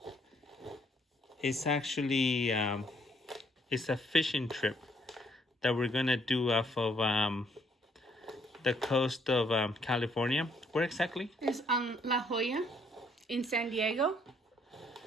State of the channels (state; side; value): normal; both; correlation 0.67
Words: It's actually it's a fishing trip that we're gonna do off of the coast of California. Where exactly? It's on La Jolla in San Diego.